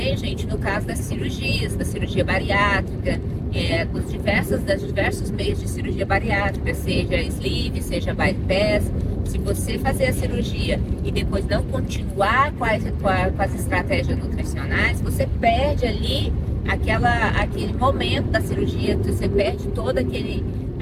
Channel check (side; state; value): both; identical; correlation 1.00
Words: gente, no caso das cirurgias, da cirurgia bariátrica, das diversos meios de cirurgia bariátrica, seja sleeve, seja bypass. Se você fazer a cirurgia e depois não continuar com as estratégias nutricionais, você perde ali aquele momento da cirurgia, você perde toda